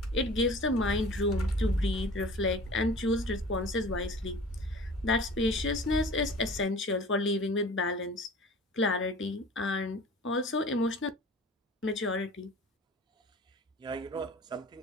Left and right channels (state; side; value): normal; both; correlation 0.42